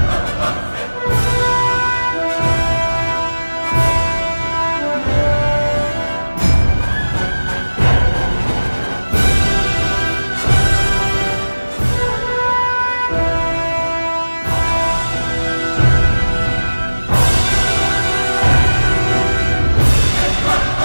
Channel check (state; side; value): inverted; both; correlation -1.00